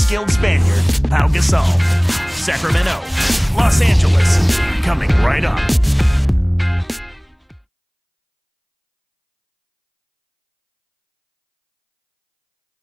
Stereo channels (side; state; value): both; identical; correlation 1.00